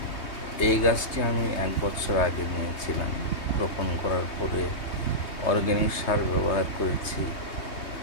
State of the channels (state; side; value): late; right; 3.2 ms